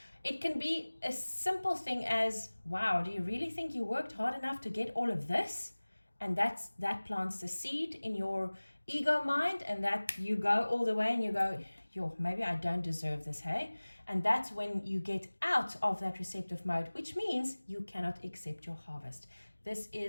it can be a simple thing as, wow, do you really think you worked hard enough to get all of this? And that plants the seed in your ego mind, and that you go all the way and you go, yo, maybe I don't deserve this, hey? And that's when you get out of that receptive mode, which means you cannot accept your harvest. This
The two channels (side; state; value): both; inverted; correlation -1.00